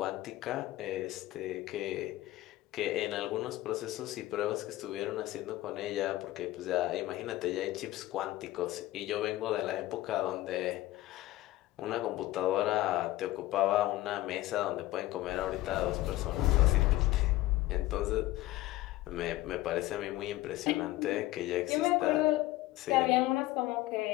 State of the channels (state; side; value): quieter; right; 16.8 dB